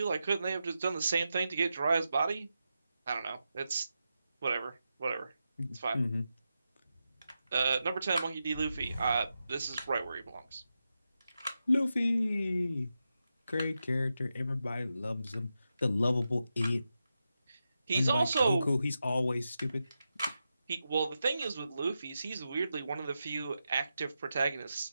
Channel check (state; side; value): inverted; both; correlation -0.89